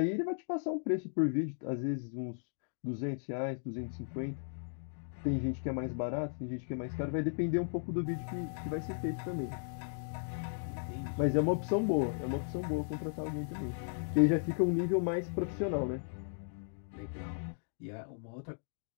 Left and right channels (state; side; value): silent; right; digital silence